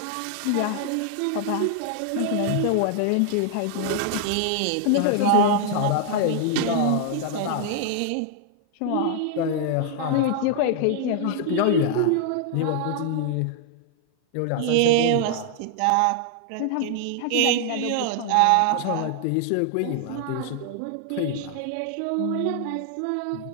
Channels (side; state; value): both; different; correlation 0.00